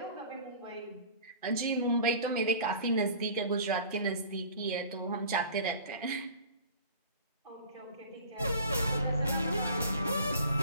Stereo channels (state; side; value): inverted; both; correlation -0.43